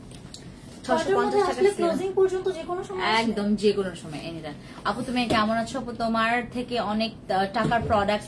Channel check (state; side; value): identical; both; correlation 1.00